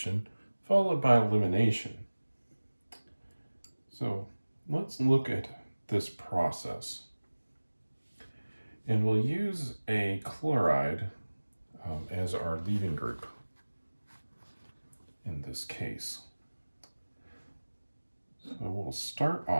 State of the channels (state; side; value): inverted; both; correlation -1.00